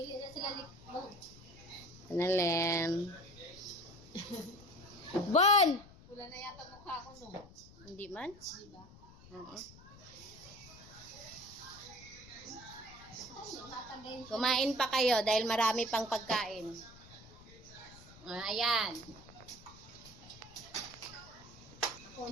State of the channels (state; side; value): noise; left; rumble, 20 dB below the sound